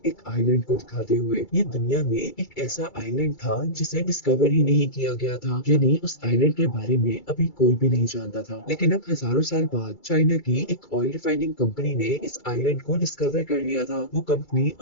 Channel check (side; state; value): right; late; 2.3 ms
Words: एक आइलैंड को दिखाते हुए। ये दुनिया में एक ऐसा आइलैंड था जिसे डिस्कवर ही नहीं किया गया था, यानी उस आइलैंड के बारे में अभी कोई भी नहीं जानता था। लेकिन अब हजारों साल बाद चाइना की एक ऑयल रिफाइनिंग कंपनी ने इस आइलैंड को डिस्कवर कर लिया था। वो कंपनी